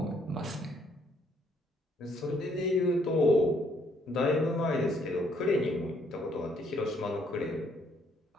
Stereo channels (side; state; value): both; normal; correlation 0.68